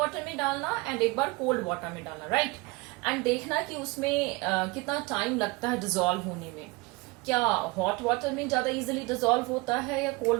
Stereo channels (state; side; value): quieter; left; 24.4 dB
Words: में डालना एंड एक बार कोल्ड वाटर में डालना, राइट? एंड देखना कि उसमें कितना टाइम लगता है डिसॉल्व होने में. क्या हॉट वाटर में ज्यादा इजीली डिसॉल्व होता है या